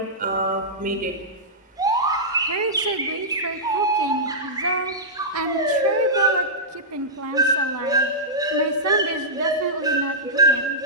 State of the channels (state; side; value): normal; both; correlation -0.13